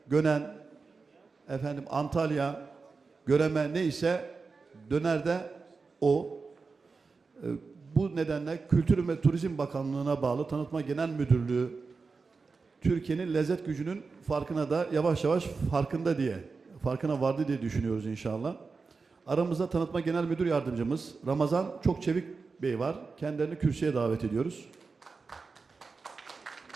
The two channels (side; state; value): left; quieter; 4.5 dB